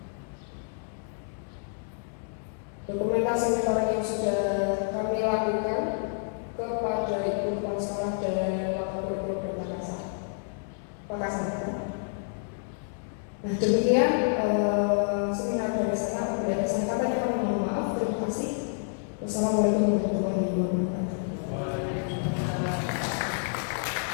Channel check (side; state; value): right; silent; digital silence